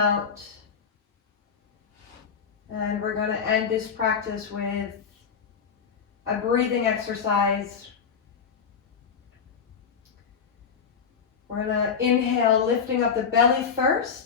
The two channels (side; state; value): right; quieter; 6.5 dB